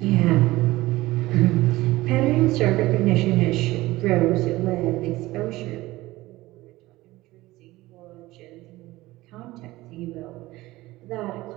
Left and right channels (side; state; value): left; quieter; 18.5 dB